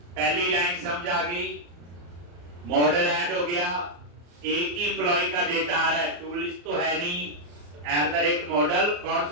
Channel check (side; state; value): left; late; 34 ms